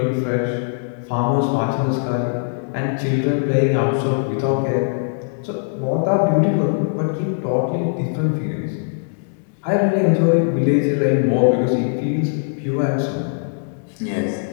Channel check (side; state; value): right; silent; digital silence